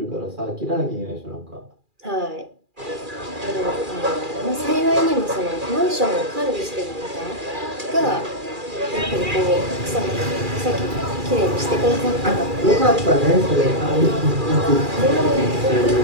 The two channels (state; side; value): late; left; 2.4 ms